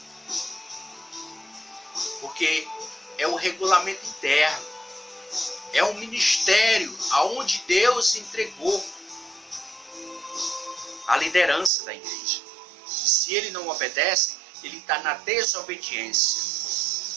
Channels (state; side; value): drops out; left; at 11.7 s